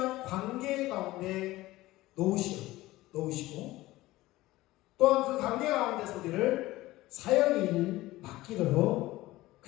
관계 가운데 놓으시고 또한 그 관계 가운데서 우리를 사역의 일을 맡기도록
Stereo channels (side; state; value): right; quieter; 17.9 dB